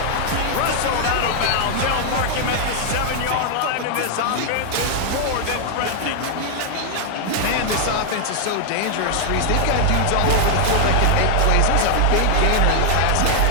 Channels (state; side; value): different; both; correlation 0.00